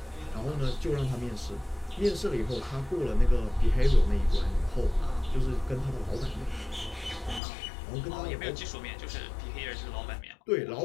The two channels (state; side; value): drops out; right; at 7.4 s